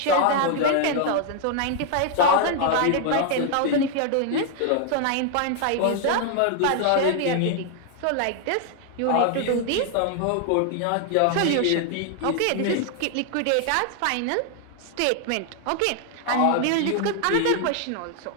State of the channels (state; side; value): different; both; correlation 0.00